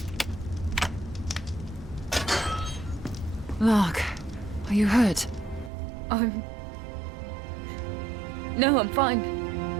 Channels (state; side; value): drops out; left; at 5.7 s